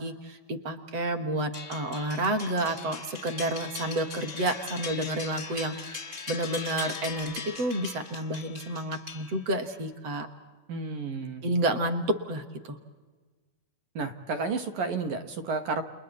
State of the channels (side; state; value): left; late; 7.9 ms